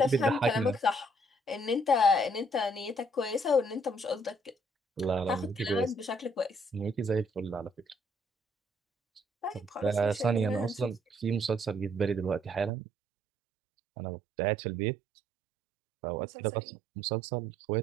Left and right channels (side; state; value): left; drops out; at 12.7 s